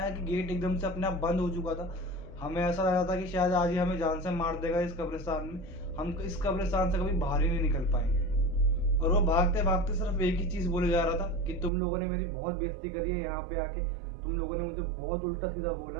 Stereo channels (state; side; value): drops out; left; at 11.7 s